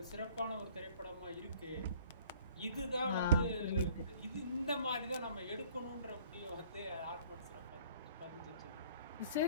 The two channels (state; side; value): inverted; both; correlation -0.53